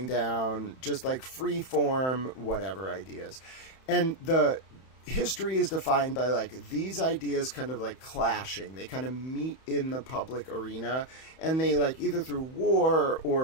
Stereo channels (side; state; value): right; late; 31 ms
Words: down, just like free form, whatever ideas. And the history is defined by like these ideas kind of like clashing. They kind of meet in the public arena, and they like either through war